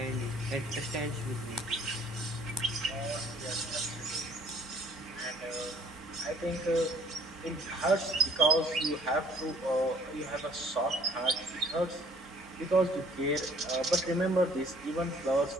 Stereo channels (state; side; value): normal; both; correlation 0.57